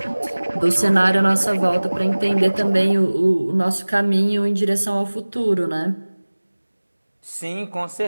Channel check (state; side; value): inverted; both; correlation -1.00